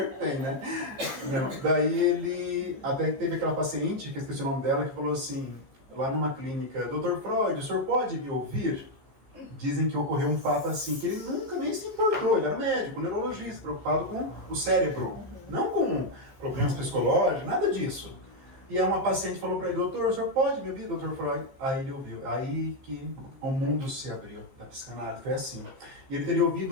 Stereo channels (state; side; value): late; left; 15 ms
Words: que tem, né? Não. Daí ele até teve aquela paciente, que eu esqueci o nome dela, que falou assim, lá numa clínica, Dr. Freud, o senhor pode me ouvir? dizem que ocorreu um fato assim, que ele nunca nem se importou, ele era médico, neurologista, preocupado com o cérebro, não com problemas psicológicos, nada disso. E aí uma paciente falou para ele, doutor, o senhor pode me ouvir, doutor Freud? Aí ele ouviu, aí que o mundo se abriu da psicanálise, foi assim. E ele teria